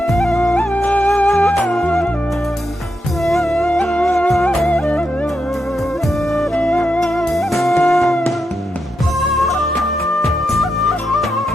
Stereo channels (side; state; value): both; normal; correlation 0.84